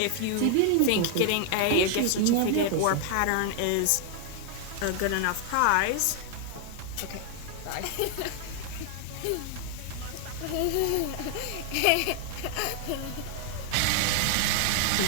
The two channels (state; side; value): different; both; correlation 0.00